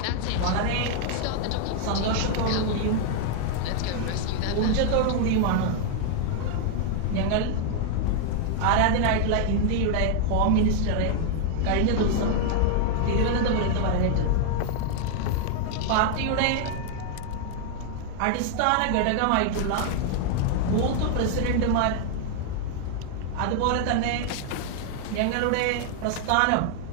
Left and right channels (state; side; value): different; both; correlation 0.00